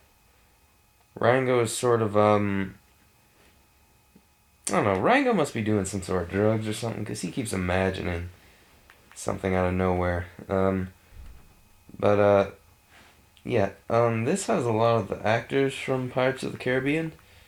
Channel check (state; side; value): identical; both; correlation 1.00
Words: Rango is sort of I don't know. Rango must be doing some sort of drugs or something because he keeps imagining something out of nowhere. But yeah. This has a lot of the actors from Pirates of the Caribbean,